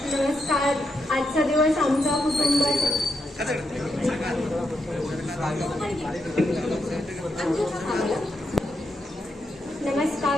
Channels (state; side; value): normal; both; correlation 0.82